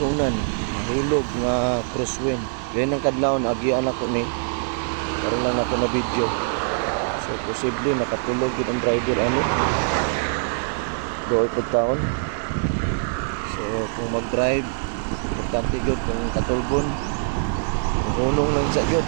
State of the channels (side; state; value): left; silent; 56 dB below the other